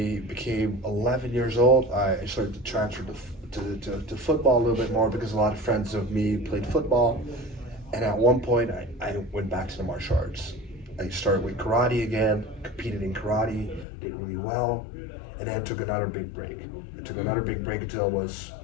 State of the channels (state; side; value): drops out; right; at 13.9 s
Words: became 11 years old, I started to transfer to football a little bit more because a lot of friends of me played football. And at one point, I went back to the martial arts. I started with karate again, competed in karate, did really well, and then took another big break. I took another big break until I was,